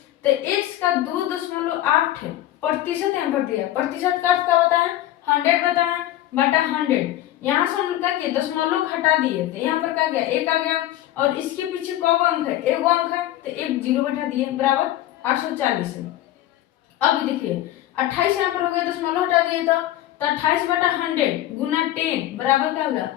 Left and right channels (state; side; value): quieter; right; 13.9 dB